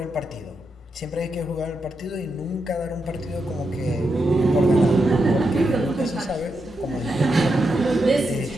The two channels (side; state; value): both; normal; correlation 0.85